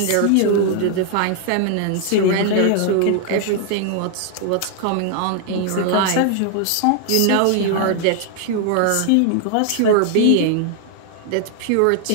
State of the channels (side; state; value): both; different; correlation 0.00